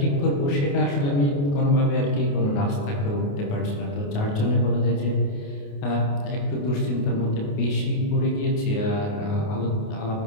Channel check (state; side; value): late; right; 28 ms